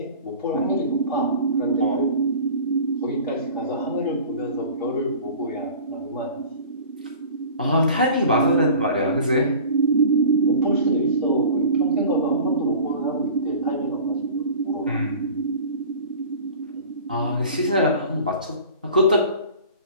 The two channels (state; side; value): inverted; both; correlation -0.41